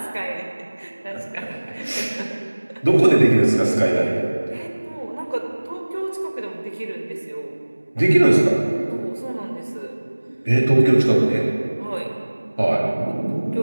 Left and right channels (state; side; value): inverted; both; correlation -1.00